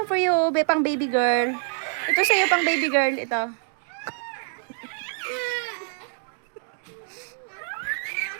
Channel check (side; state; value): left; silent; 56 dB below the other